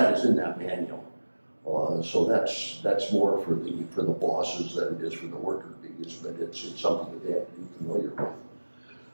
is in that manual. So that's more for the bosses than it is for the worker bees, but it's something that they have to be familiar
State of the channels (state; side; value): inverted; both; correlation -1.00